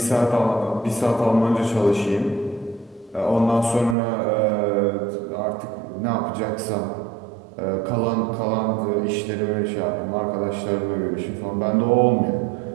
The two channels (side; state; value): left; drops out; at 4.0 s